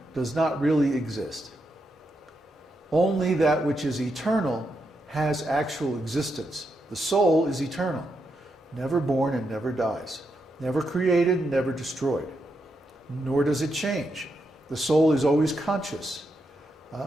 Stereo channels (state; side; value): normal; both; correlation 0.83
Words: does not really exist. Only that which is eternal has actual existence. The soul is eternal, never born and never dies, never created, never destroyed, nor does it change. The soul is always conscious,